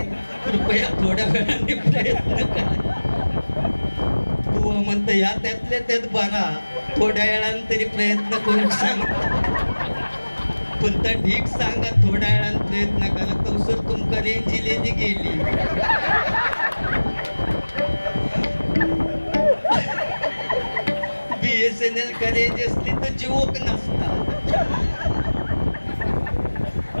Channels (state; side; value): inverted; both; correlation -1.00